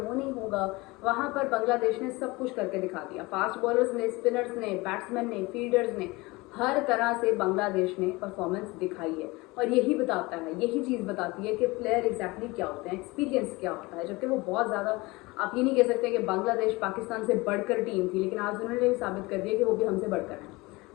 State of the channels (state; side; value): quieter; right; 23.0 dB